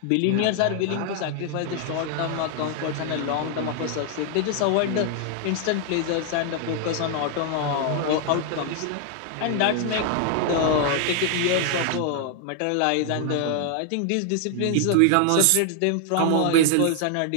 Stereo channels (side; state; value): both; different; correlation 0.00